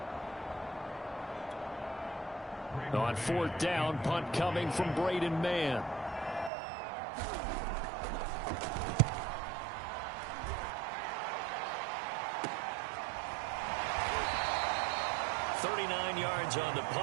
On 4th down, punt coming from Braden Mann. Yards on the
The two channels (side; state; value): left; drops out; at 6.5 s